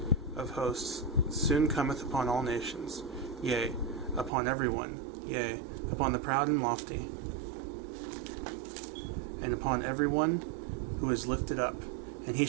of hosts soon cometh upon all nations, yea, upon every one, yea, upon the proud and lofty, and upon every one who is lifted up, and he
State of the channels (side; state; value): left; drops out; at 4.3 s